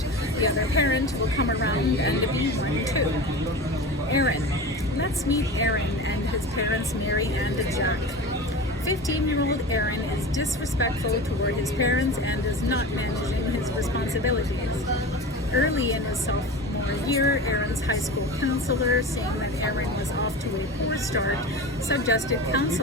the other parent will come around and be one too. Aaron. Let's meet Aaron and his parents Mary and Jack. 15-year-old Aaron is disrespectful toward his parents and is not managing his responsibilities. Early in his sophomore year, Aaron's high school counselor, seeing that Aaron was off to a poor start, suggested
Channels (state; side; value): normal; both; correlation 0.31